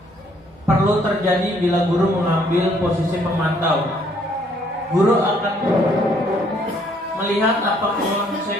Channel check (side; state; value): both; normal; correlation 0.65